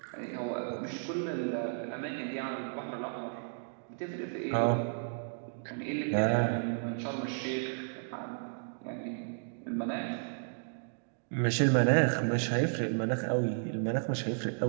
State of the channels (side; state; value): left; silent; digital silence